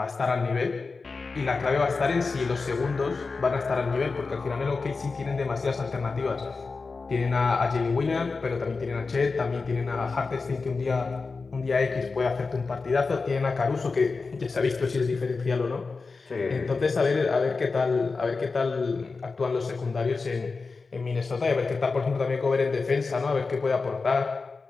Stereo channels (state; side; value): quieter; right; 4.2 dB